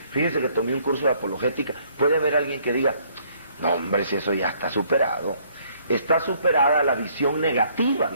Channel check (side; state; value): both; inverted; correlation -0.64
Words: fíjese que tomé un curso de apologética, puede haber alguien que diga, no hombre, si eso ya está superado. Está superada la visión negativa